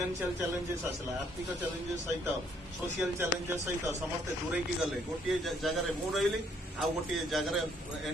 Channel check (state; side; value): normal; both; correlation 0.67